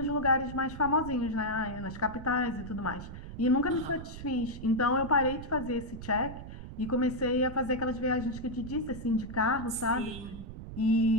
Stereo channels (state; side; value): noise; right; rumble, 11 dB below the sound